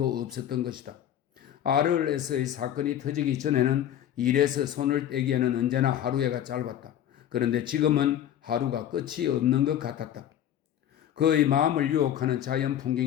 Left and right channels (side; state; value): right; quieter; 10.9 dB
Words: 없었던 것이다. RLS의 사건이 터지기 전에는 일에서 손을 떼기에는 언제나 하루가 짧았다. 그런데 지금은 하루가 끝이 없는 것 같았다. 그의 마음을 유혹하는 자연